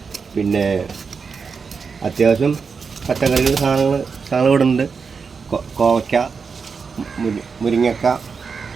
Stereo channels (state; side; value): quieter; left; 5.4 dB